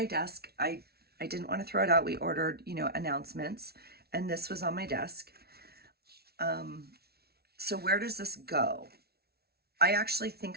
desk. I didn't want to throw it out. We ordered, you know, announcements, and this was on my desk. So where does this go? I actually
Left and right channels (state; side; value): late; left; 0.45 ms